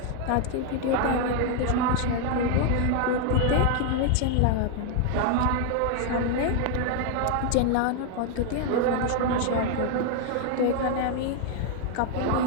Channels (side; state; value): both; different; correlation 0.00